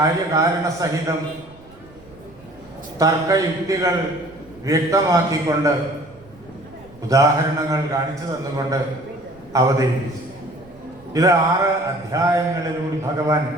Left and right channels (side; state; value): right; noise; rumble, 25 dB below the sound